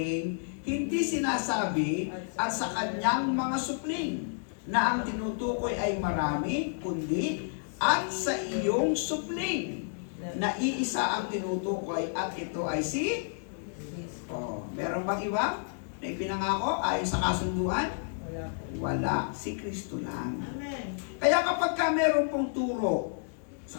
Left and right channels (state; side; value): silent; right; digital silence